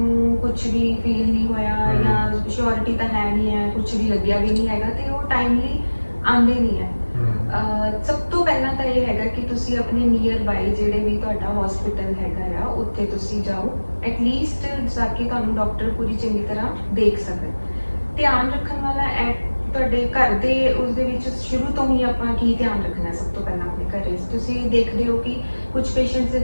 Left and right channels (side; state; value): both; inverted; correlation -1.00